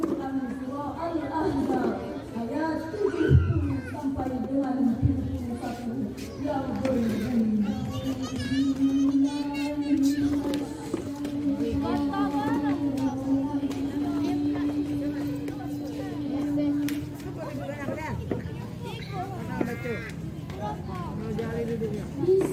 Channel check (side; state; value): both; identical; correlation 1.00